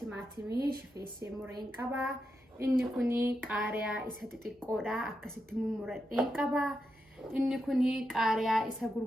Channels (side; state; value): both; normal; correlation 0.86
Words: shifeessee mureen qaba. Inni kuni qaariyaa isa xixiqqoodha akkasitti mummuradheen qaba. Inni kuni qaariyaa isa